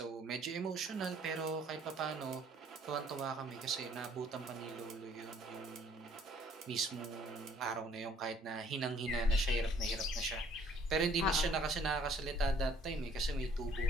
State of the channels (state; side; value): normal; both; correlation 0.59